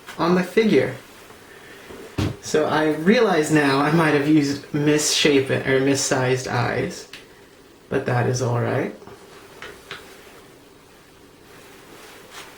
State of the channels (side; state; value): both; identical; correlation 1.00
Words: on the figure. So I realize now I might have used misshapen or missized eyes, but that is all right.